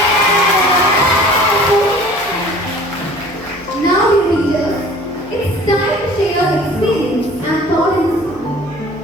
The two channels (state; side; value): noise; left; hum, 23 dB below the sound